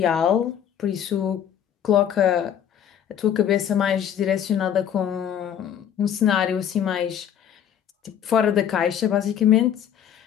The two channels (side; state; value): right; quieter; 9.3 dB